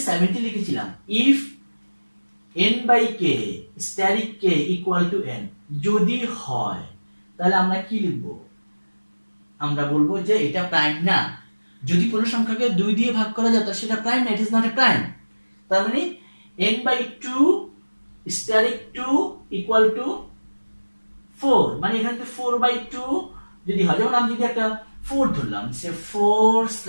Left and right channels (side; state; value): both; inverted; correlation -1.00